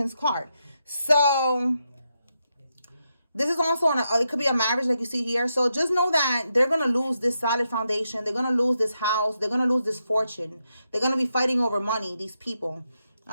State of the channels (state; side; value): inverted; both; correlation -0.84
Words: card. So this is also it could be a marriage like you see here. So just know that they're going to lose this solid foundation. They're going to lose this house. They're going to lose this fortune. They're going to be fighting over money, these people.